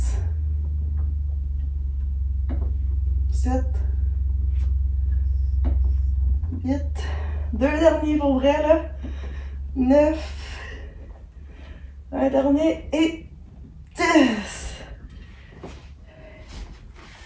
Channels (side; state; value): both; identical; correlation 1.00